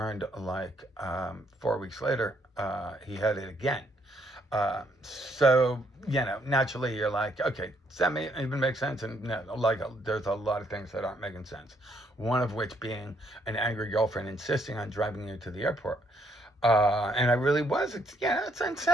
4 weeks later, he had it again. So, naturally you're like, okay, does that even make sense? And no, like, there's a lot of things that aren't making sense. One of which being an angry girlfriend insisting on driving you to the airport. And I really was. It's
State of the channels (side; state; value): both; normal; correlation 0.71